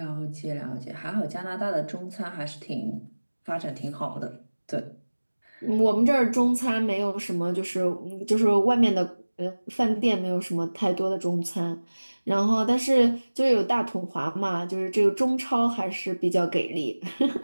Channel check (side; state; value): both; inverted; correlation -1.00